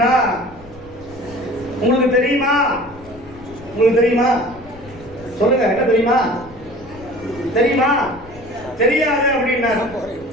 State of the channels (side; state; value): left; noise; rumble, 21 dB below the sound